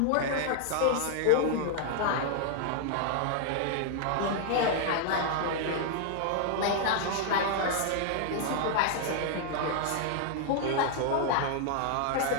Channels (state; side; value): different; both; correlation -0.01